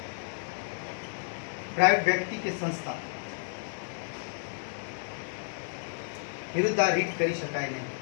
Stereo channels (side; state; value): right; silent; digital silence